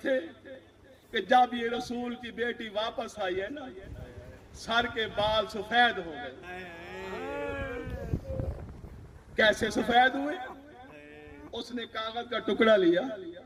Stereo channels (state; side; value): identical; both; correlation 1.00